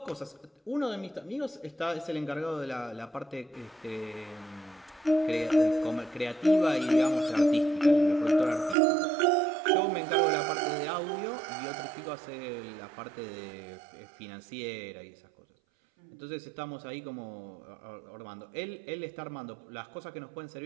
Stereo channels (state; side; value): drops out; left; at 8.8 s